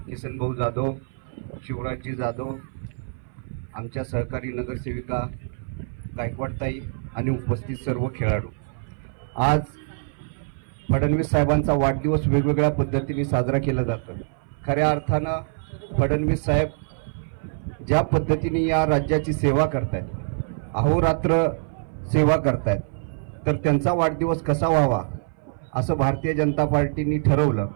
जाधव, शिवराजजी जाधव, आमच्या सहकारी नगरसेविका गायकवाडताई आणि उपस्थित सर्व खेळाडू. आज फडणवीस साहेबांचा वाढदिवस वेगवेगळ्या पद्धतीने साजरा केला जातो. खऱ्या अर्थानं फडणवीस साहेब ज्या पद्धतीने या राज्याची सेवा करतायत, अहोरात्र सेवा करतायत, तर त्यांचा वाढदिवस कसा व्हावा असं भारतीय जनता पार्टीने ठरवलं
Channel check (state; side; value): silent; left; 58 dB below the other